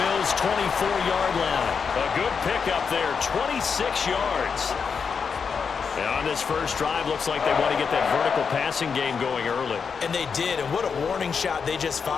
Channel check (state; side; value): quieter; right; 6.0 dB